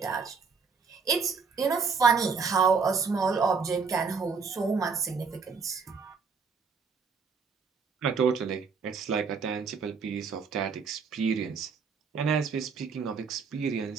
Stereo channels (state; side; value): quieter; left; 5.4 dB